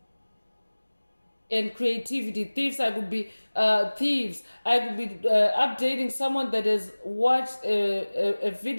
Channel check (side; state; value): both; inverted; correlation -1.00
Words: and creativity. Thieves, I could be thieves. I could be updating someone that has watched a